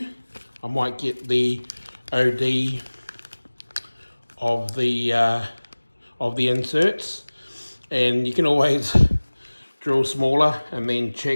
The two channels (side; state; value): both; inverted; correlation -1.00